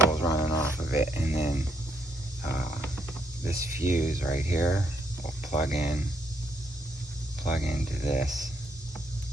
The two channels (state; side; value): normal; both; correlation 0.74